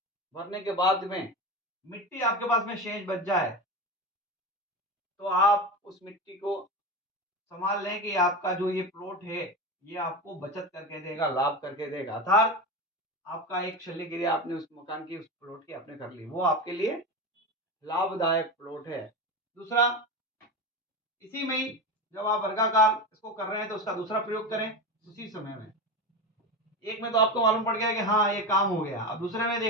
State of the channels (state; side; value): normal; both; correlation 0.21